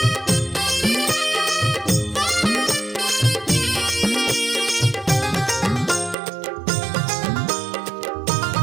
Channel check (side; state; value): left; drops out; at 6.2 s